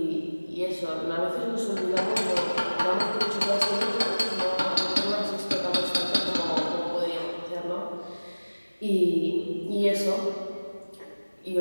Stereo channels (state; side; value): inverted; both; correlation -1.00